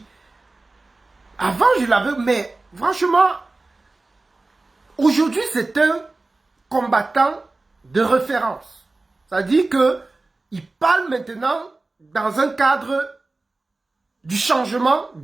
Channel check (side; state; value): left; quieter; 3.3 dB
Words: Avant je l'avais, mais franchement, aujourd'hui c'est un combattant de référence. C'est-à-dire qu'il parle maintenant dans un cadre du changement